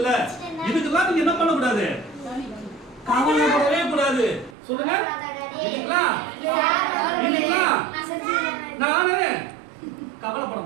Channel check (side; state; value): left; drops out; at 4.5 s